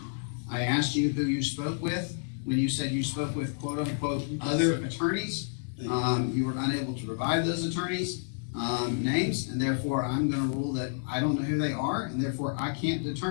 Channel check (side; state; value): right; silent; digital silence